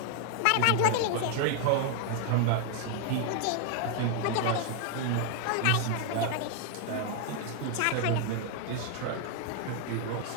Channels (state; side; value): different; both; correlation 0.00